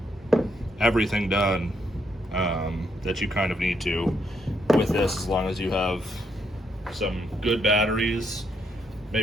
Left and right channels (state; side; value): normal; both; correlation 0.76